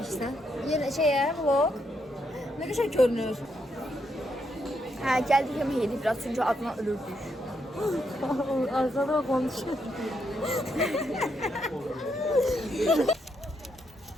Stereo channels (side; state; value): both; normal; correlation 0.79